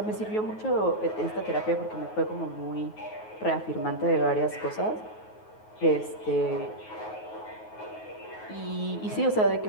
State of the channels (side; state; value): right; late; 9.4 ms